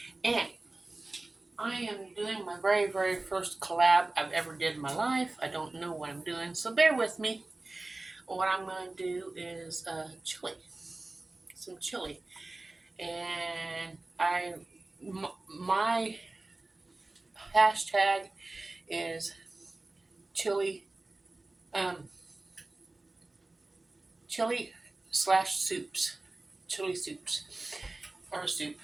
and I am doing my very first collab I've ever did in my life. I don't know what I'm doing, so bear with me. What I'm going to do is some chili, and my hashtag is chili, um, chili slash soups, chili soups or soup.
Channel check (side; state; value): left; quieter; 3.0 dB